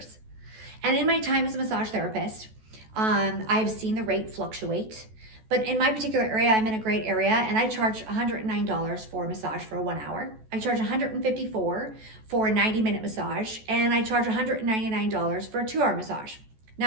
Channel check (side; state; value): left; late; 14 ms